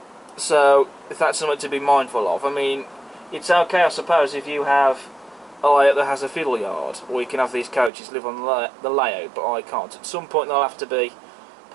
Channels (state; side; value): drops out; left; at 7.9 s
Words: So if that's something to be mindful of, I mean, it's okay I suppose if you have a layout that has a fiddle yard, or you can have these coaches live on the layout, but I can't. At some point they'll have to be